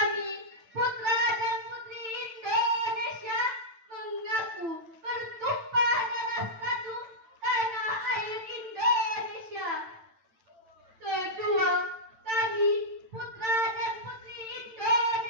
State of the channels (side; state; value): left; late; 8.9 ms